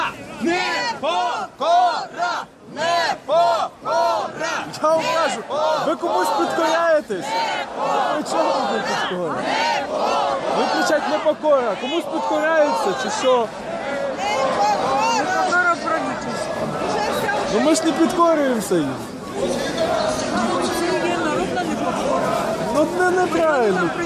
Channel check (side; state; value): both; identical; correlation 1.00